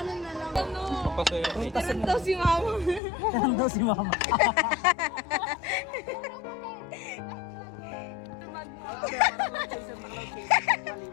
na lang. Ano? Tirang daw si mama. Tirang daw si mama.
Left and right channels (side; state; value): right; drops out; at 3.0 s